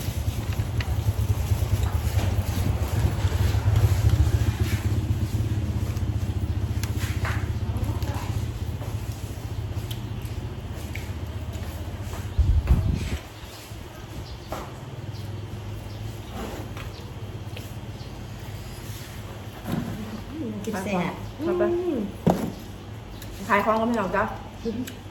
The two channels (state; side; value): identical; both; correlation 1.00